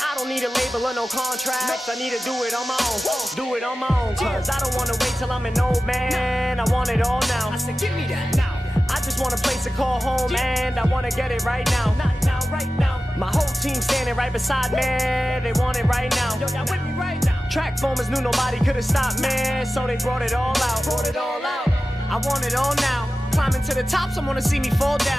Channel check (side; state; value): both; normal; correlation 0.95